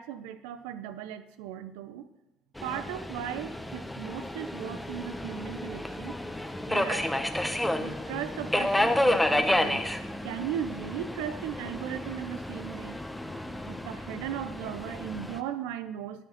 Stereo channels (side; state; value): both; normal; correlation 0.78